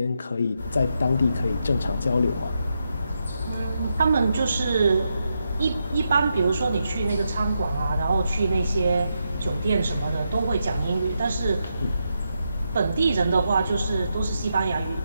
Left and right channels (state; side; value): inverted; both; correlation -0.84